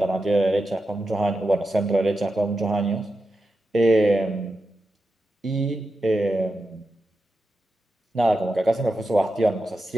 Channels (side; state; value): both; normal; correlation 0.89